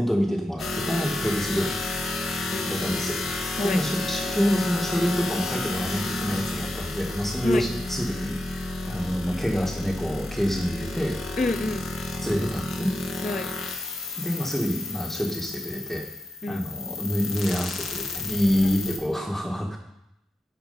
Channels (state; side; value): normal; both; correlation 0.89